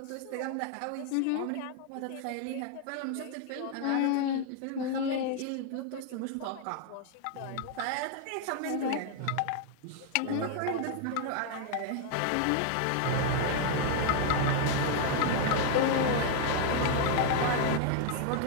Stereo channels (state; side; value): different; both; correlation 0.00